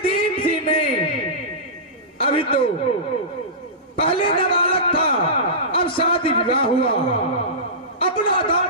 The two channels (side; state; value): both; normal; correlation -0.20